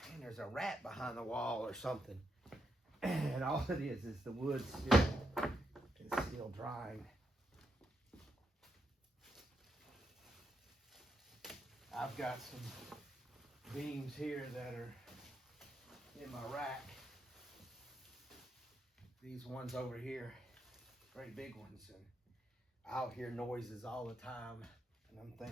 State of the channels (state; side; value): normal; both; correlation 0.81